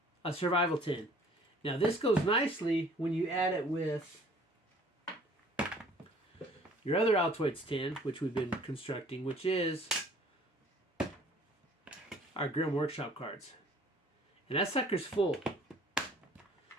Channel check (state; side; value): normal; both; correlation 0.54